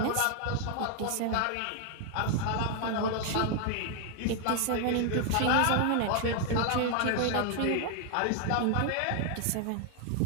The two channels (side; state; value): both; different; correlation 0.00